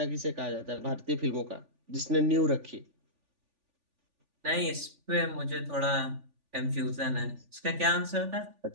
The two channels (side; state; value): left; late; 3.4 ms